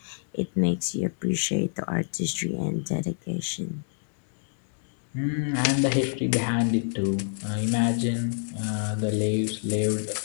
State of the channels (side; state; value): right; silent; digital silence